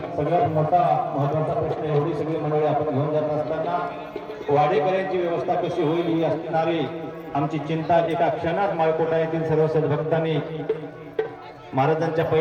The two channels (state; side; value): identical; both; correlation 1.00